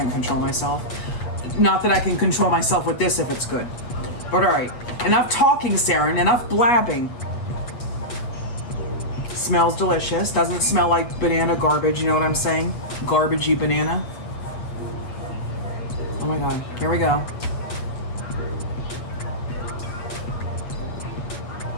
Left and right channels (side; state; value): right; late; 8.3 ms